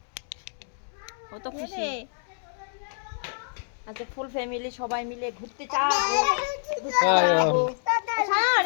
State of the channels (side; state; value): right; silent; digital silence